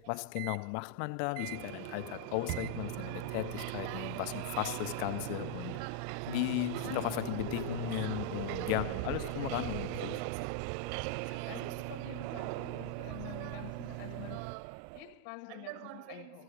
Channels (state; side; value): different; both; correlation -0.01